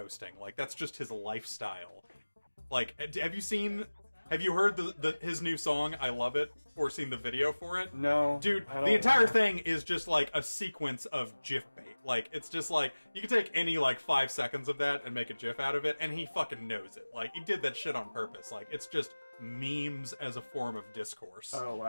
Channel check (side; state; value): both; inverted; correlation -1.00